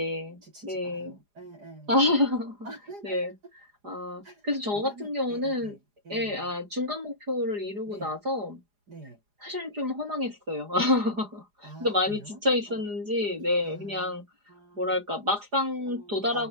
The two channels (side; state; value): left; late; 4.9 ms